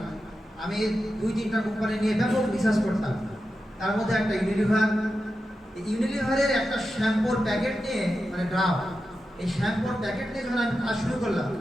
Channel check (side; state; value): both; normal; correlation 0.90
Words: আমি 2-3টা কোম্পানি নিয়ে ব্যাপক রিসার্চ করতাম। তার মধ্যে একটা ইউনিলিভারের একটা শ্যাম্পুর প্যাকেট নিয়ে মানে ড্রাম, এই শ্যাম্পুর প্যাকেট নিয়ে যখন আমি কাজ শুরু করলাম